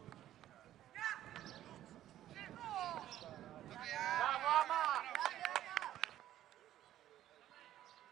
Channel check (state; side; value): quieter; left; 12.7 dB